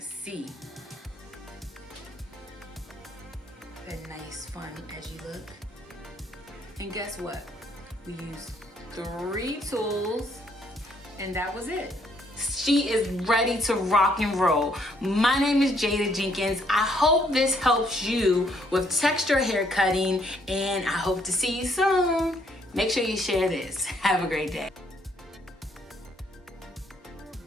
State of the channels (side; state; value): both; normal; correlation 0.69